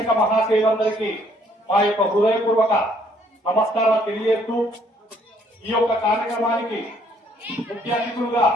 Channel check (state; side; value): normal; both; correlation 0.64